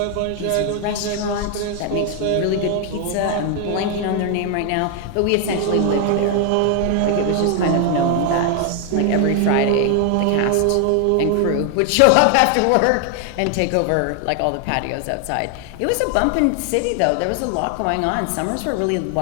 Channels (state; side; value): different; both; correlation 0.00